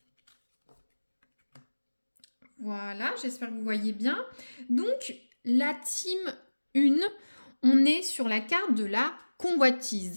voilà, j'espère que vous voyez bien. Donc, la team 1, on est sur la carte de la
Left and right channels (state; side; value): inverted; both; correlation -1.00